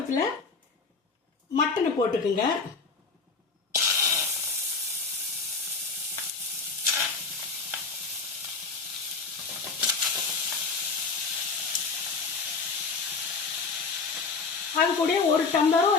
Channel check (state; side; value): quieter; right; 4.6 dB